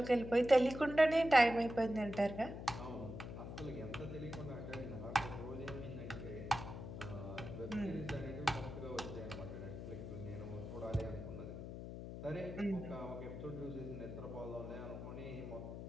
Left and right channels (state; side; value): noise; left; hum, 8 dB below the sound